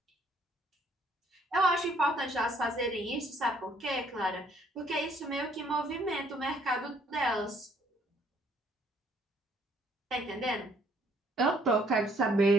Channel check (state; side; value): normal; both; correlation 0.64